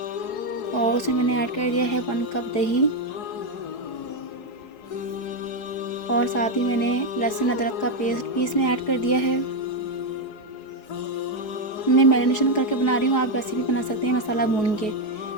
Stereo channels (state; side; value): late; right; 4.7 ms